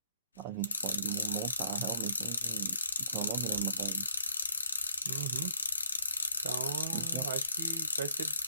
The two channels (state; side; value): inverted; both; correlation -0.67